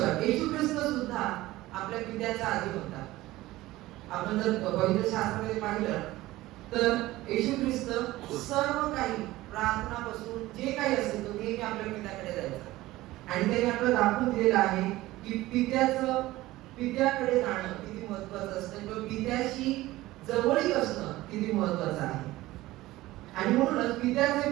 येशू ख्रिस्त सुद्धा आपल्या पित्याचा आधी होता. आपण जर पवित्र शास्त्रामध्ये पाहिलं तर येशू ख्रिस्त सर्व काही प्रार्थनापासून जे काही असेल तो नेहमी आपल्या पित्याकडे जायचा. आणि त्याने आपल्याला दाखवून दिलेलं आहे की पित्याकडे जाणं किती महत्वाचं असतं किंवा पित्याशी जवळीक असणं किती महत्वाचं आहे. आणि म्हणूनच पित्याचे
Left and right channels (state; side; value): quieter; left; 17.5 dB